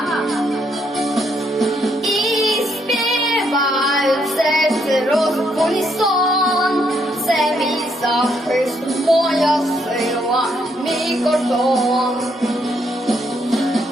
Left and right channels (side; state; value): both; normal; correlation 0.74